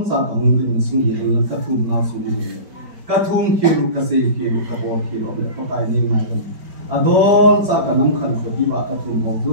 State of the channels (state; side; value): late; left; 4.9 ms